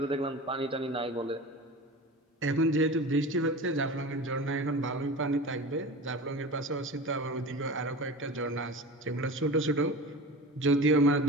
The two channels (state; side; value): normal; both; correlation 0.32